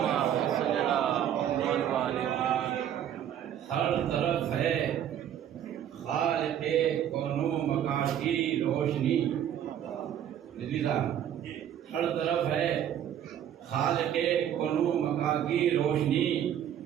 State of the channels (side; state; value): left; quieter; 10.1 dB